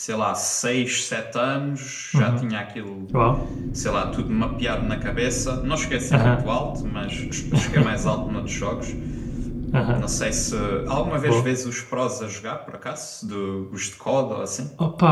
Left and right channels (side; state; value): both; identical; correlation 1.00